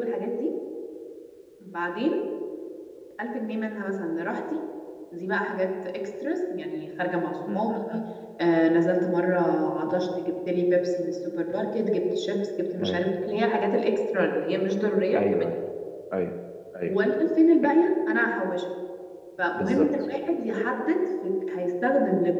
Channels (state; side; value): identical; both; correlation 1.00